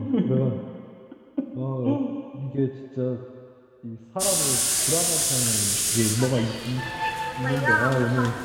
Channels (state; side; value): identical; both; correlation 1.00